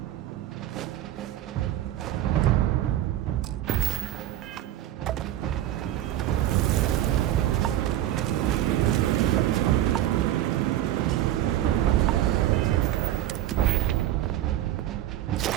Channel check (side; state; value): left; quieter; 13.1 dB